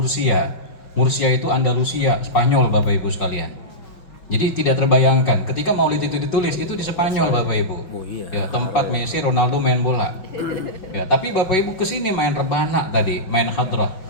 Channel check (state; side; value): late; right; 5.4 ms